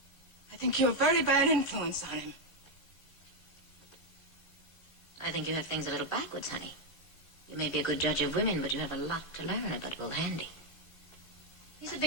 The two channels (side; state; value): right; late; 3.7 ms